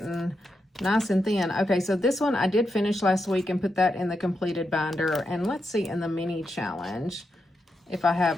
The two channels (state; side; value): normal; both; correlation 0.85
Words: Nice and thin. Okay, so this one I did finish last week and put that in the completed binder. And let's see in the mini challenge if I